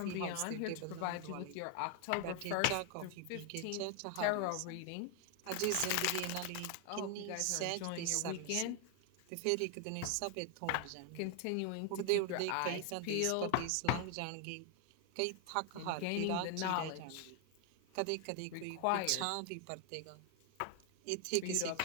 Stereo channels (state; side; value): different; both; correlation 0.01